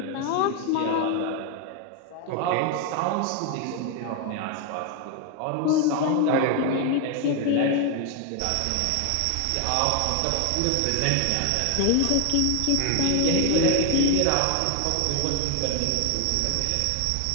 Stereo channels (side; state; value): both; different; correlation 0.01